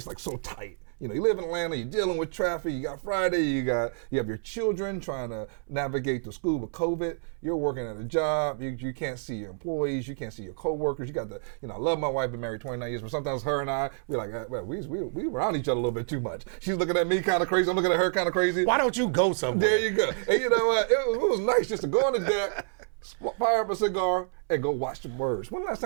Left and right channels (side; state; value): left; silent; 59 dB below the other